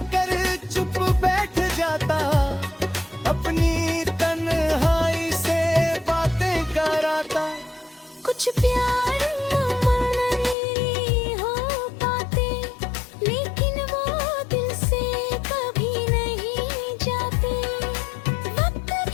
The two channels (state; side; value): drops out; right; at 10.6 s